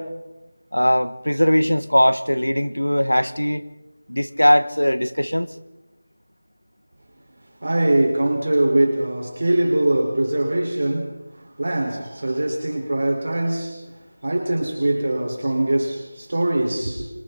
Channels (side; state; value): both; inverted; correlation -0.99